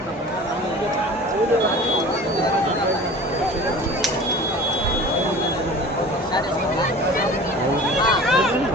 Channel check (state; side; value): normal; both; correlation 0.40